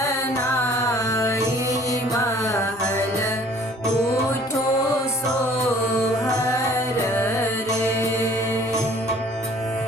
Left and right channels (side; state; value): both; normal; correlation 0.53